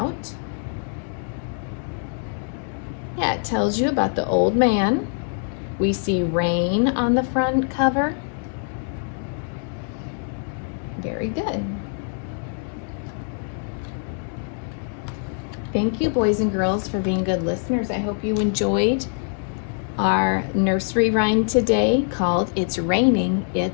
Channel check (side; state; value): right; silent; 59 dB below the other